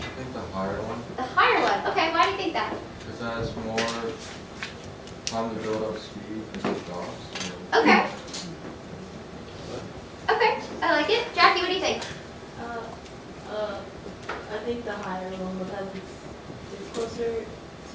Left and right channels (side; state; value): both; identical; correlation 1.00